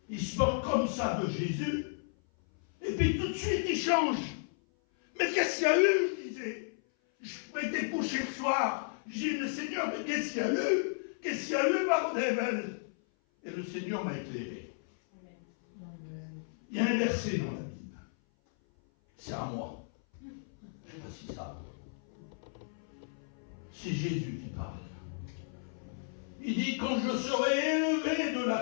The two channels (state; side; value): silent; right; 55 dB below the other